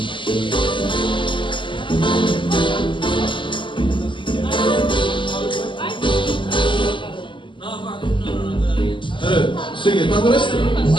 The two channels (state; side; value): late; right; 0.24 ms